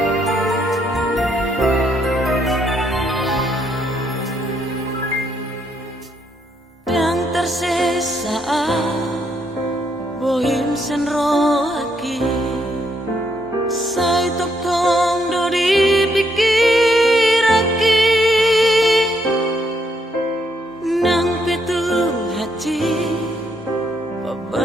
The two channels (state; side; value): normal; both; correlation 0.74